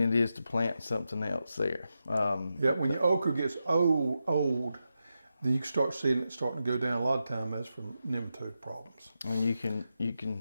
is to plant something else there. Yeah, when your okra gets old, then you can start seeing it starting to go down. A lot of time that's from nematode problems. And you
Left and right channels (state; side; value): inverted; both; correlation -0.88